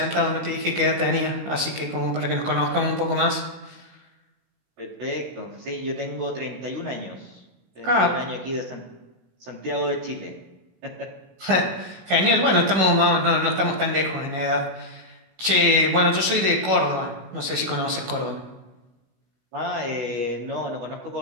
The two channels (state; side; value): late; left; 16 ms